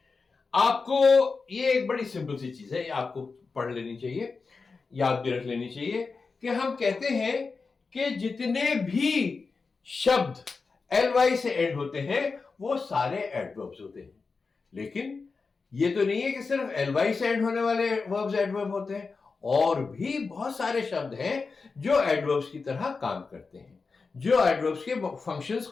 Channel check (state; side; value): quieter; right; 4.5 dB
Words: आपको ये एक बड़ी सिंपल सी चीज है, ये आपको पढ़ लेनी चाहिए, याद भी रख लेनी चाहिए, कि हम कहते हैं कि जितने भी शब्द ly से एंड होते हैं वो सारे एडवर्ब्स होते हैं. लेकिन ये तो नहीं है कि सिर्फ ly से एंड होने वाले वर्ब्स एडवर्ब होते हैं, और भी बहुत सारे शब्द हैं जो एडवर्ब्स की तरह काम करते हैं, जो एडवर्ब्स के फंक्शंस